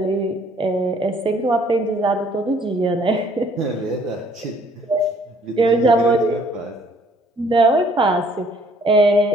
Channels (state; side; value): normal; both; correlation 0.60